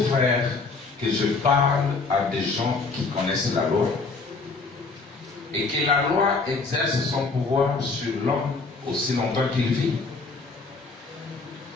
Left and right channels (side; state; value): right; quieter; 4.0 dB